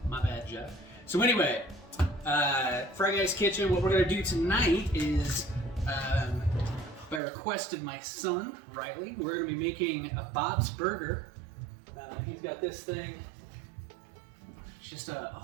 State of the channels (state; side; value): drops out; left; at 7.2 s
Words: My bad, Jeff. So anyway, Freyguys kitchen, what we're gonna do tonight is, by request of my son, Riley, we're gonna be making a Bob's Burger. He's got this thing. Just a